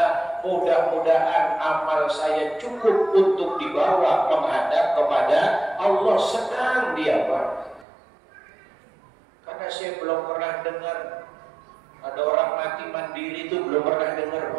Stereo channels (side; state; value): left; drops out; at 7.9 s